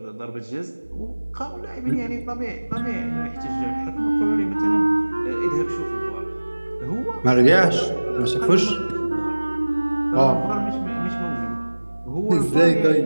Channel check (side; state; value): both; inverted; correlation -1.00